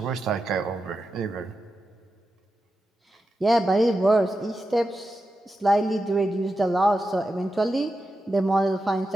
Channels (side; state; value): both; normal; correlation 0.89